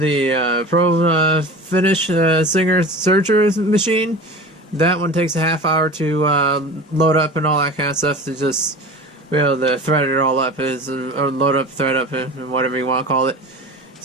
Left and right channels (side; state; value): both; normal; correlation 0.35